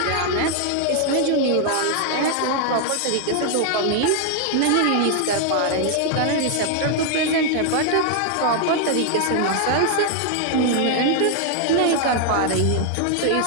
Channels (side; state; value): both; different; correlation 0.00